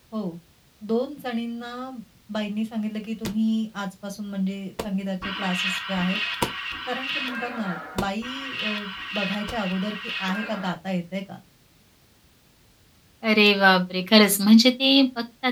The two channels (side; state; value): both; identical; correlation 1.00